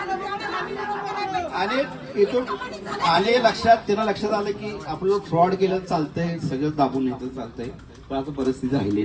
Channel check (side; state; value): both; identical; correlation 1.00